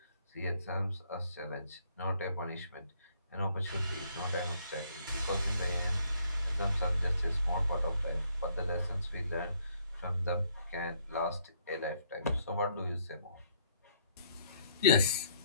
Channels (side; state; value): both; inverted; correlation -0.67